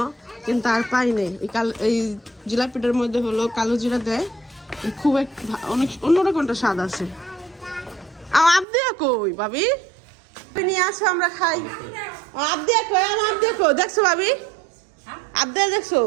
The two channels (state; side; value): drops out; left; at 8.7 s